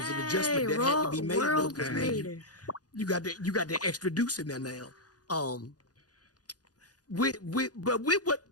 adjustment that had to be made because man, you got the extra deuce in there now. With what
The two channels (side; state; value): right; late; 0.68 ms